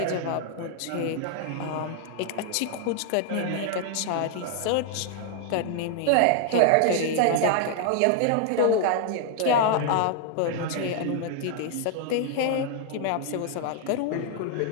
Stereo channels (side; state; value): both; different; correlation 0.00